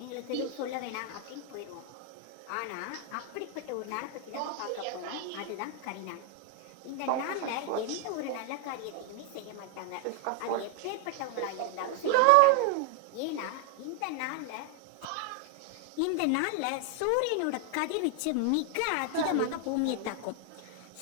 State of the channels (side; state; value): both; different; correlation 0.01